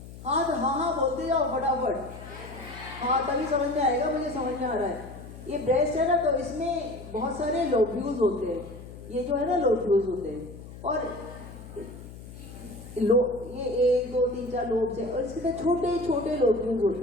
हाँ तो हाँ बोलते जाओ फटाफट, हाँ तभी समझ में आएगा, मुझे समझ में आ रहा है। ये ब्रेस्ट है ना, तो इसमें बहुत सारे लोब्यूल्स होते हैं, ये जो है ना लोब्यूल्स होते हैं, और ये 1, 2, 3, 4 लोब्स है, और इसके छोटे छोटे लोब्यूल्स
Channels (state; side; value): noise; left; hum, 15 dB below the sound